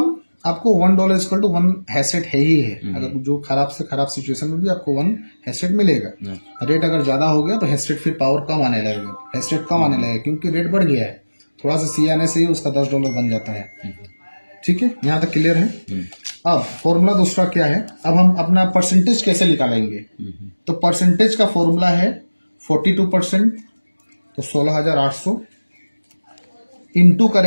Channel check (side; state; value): both; inverted; correlation -1.00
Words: आपको $1 इक्वल टू 1 हैश रेट है ही है, अगर जो खराब से खराब सिचुएशन में भी आपको 1 हैश रेट मिलेगा। रेट अगर ज्यादा हो गया तो हैश रेट फिर पावर कम आने लगेगा, हैश रेट कम आने लगेगा, क्योंकि रेट बढ़ गया है, थोड़ा सा CA आने से ही उसका $10 बन जाता है। ठीक है, यहाँ तक क्लियर है। अब फॉर्मूला दूसरा क्या है, अब हम अपना परसेंटेज कैसे निकालेंगे। तो परसेंटेज का फॉर्मूला है 42%, तो 16,800 इंटू